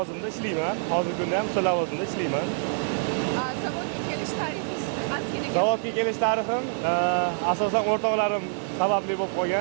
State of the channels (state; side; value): silent; left; digital silence